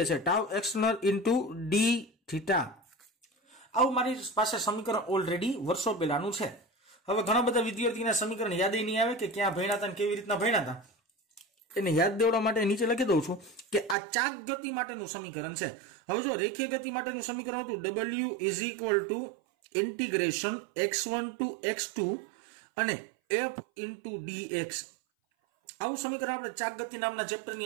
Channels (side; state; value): left; drops out; at 14.0 s